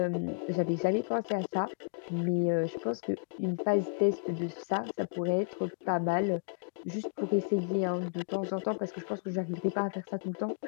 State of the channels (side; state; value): right; quieter; 38.6 dB